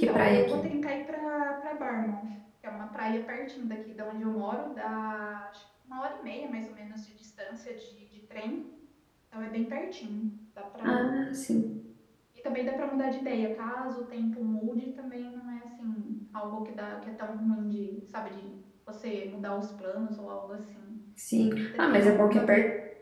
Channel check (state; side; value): identical; both; correlation 1.00